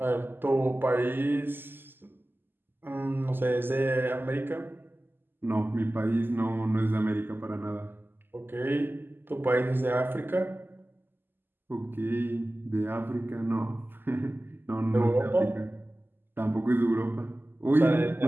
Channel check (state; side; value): late; left; 0.096 ms